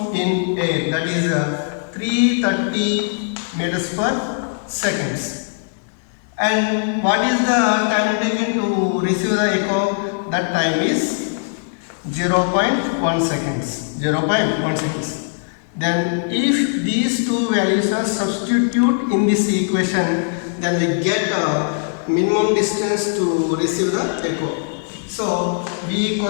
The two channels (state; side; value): silent; right; digital silence